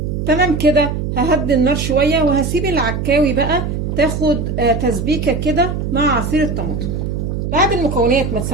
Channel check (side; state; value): right; noise; hum, 3 dB below the sound